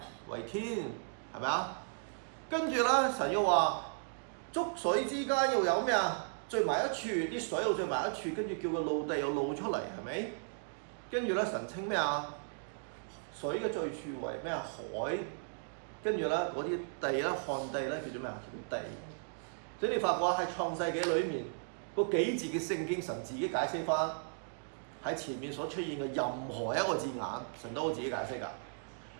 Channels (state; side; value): silent; left; digital silence